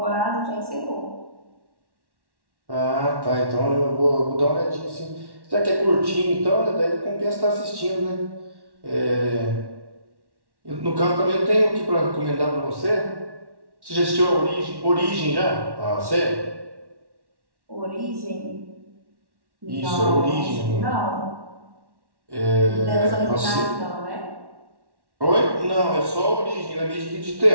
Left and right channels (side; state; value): left; late; 1.1 ms